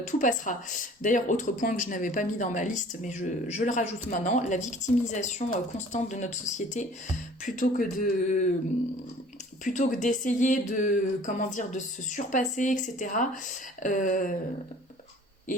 tout passera. D'ailleurs, autre point que je n'avais pas mis dans ma liste, mais je le rajoute maintenant, la victimisation constante de notre société, plutôt que d'essayer de se surpasser, etc.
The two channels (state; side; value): normal; both; correlation 0.50